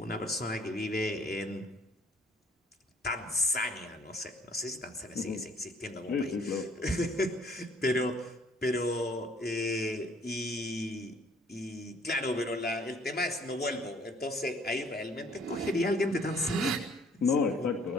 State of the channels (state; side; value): normal; both; correlation 0.59